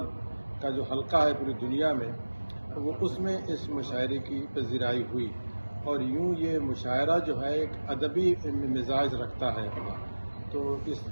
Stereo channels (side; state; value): both; inverted; correlation -1.00